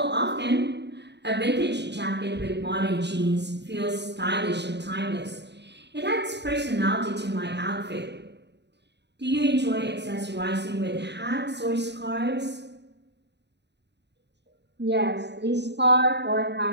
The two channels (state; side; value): late; left; 0.50 ms